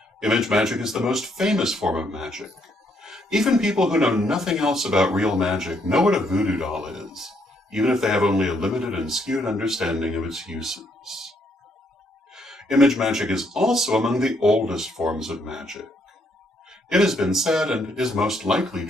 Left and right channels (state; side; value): normal; both; correlation 0.72